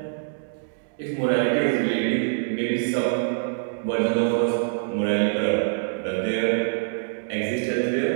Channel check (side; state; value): left; silent; digital silence